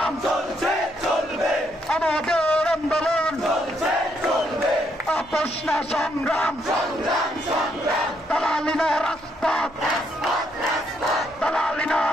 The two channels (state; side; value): noise; right; rumble, 26 dB below the sound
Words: চলছে চলবে, আমাদের আন্দোলন চলছে চলবে, আপোষ না সংগ্রাম সংগ্রাম সংগ্রাম, দালালি না রাজপথ দালালি না